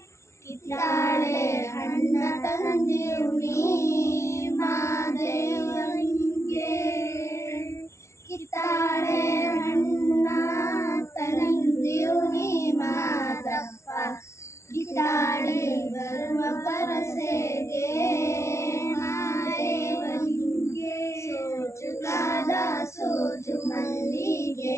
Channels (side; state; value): right; late; 0.13 ms